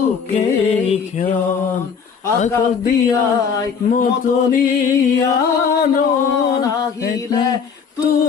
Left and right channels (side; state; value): right; quieter; 6.3 dB